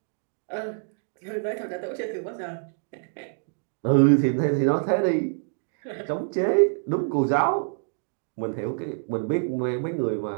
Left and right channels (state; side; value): silent; left; digital silence